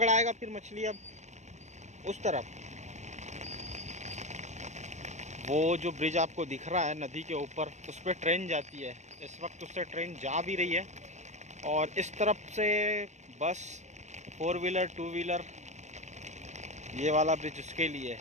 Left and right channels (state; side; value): late; left; 0.34 ms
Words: फिर मछली? अब उस तरफ वो जो ब्रिज आपको दिख रहा है नदी के ऊपर, उस पर ट्रेन जाती है। इस वक्त उससे ट्रेन जा भी रही है। और इस तरफ से बस, 4 व्हीलर 2 व्हीलर, ये वाला ब्रिज उसके लिए